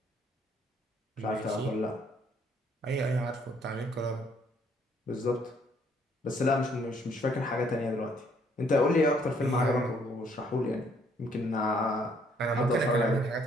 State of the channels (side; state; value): both; normal; correlation 0.66